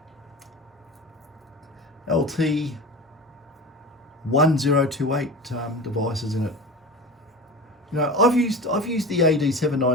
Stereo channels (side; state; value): both; normal; correlation 0.31